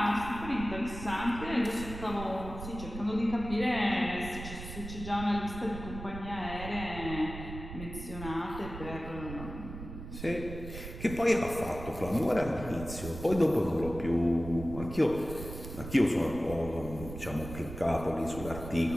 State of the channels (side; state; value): right; noise; rumble, 10 dB below the sound